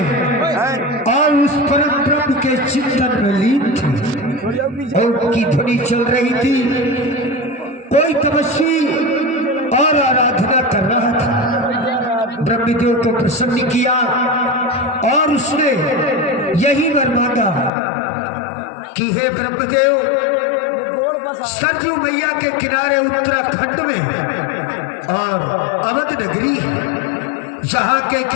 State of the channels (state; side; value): drops out; right; at 17.7 s